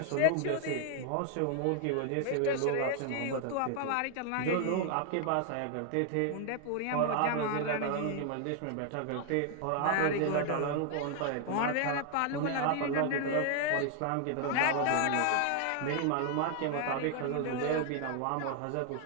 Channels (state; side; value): different; both; correlation 0.00